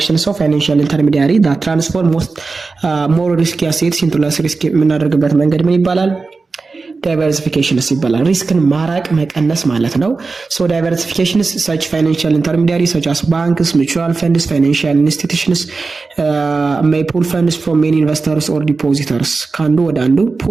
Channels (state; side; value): quieter; left; 4.1 dB